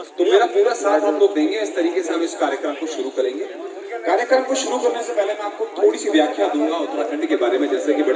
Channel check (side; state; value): both; identical; correlation 1.00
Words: तो मेरा पूरा साथ आप लोग देंगे। इस तरीके से हम इस कार्यक्रम को शुरू करेंगे। कार्यक्रम को शुरू करने से पहले मैं आपको थोड़ी सी व्याख्या दूंगा उत्तराखंड के बारे में। जैसे कि